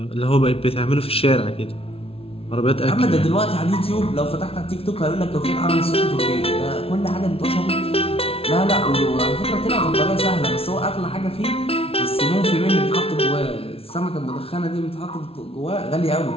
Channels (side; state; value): right; late; 0.27 ms